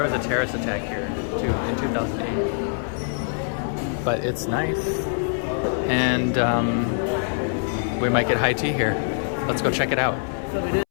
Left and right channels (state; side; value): silent; right; 62 dB below the other